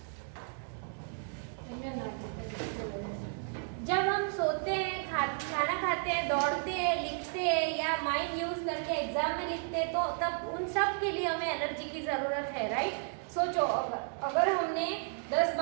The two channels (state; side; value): silent; left; 56 dB below the other